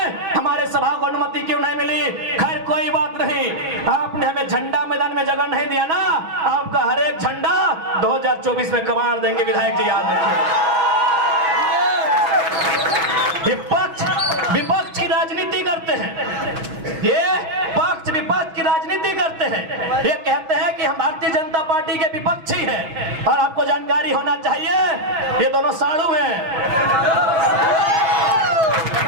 हमारे सभा को अनुमति क्यों नहीं मिली? खैर कोई बात नहीं, आपने हमें झंडा मैदान में जगह नहीं दिया ना, आपका हर एक झंडा 2024 में कमाल देंगे। विधायक जी याद रखिए, विपक्ष की राजनीति करते हैं, ये पक्ष विपक्ष की राजनीति करते हैं, ये कहते हैं कि हम भारतीय जनता पार्टी के विपक्षी हैं, और आपको जानकारी होना चाहिए ये दोनों साड़ू हैं,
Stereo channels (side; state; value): left; late; 6.1 ms